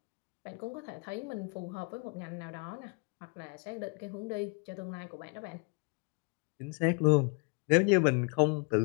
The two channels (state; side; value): quieter; right; 35.6 dB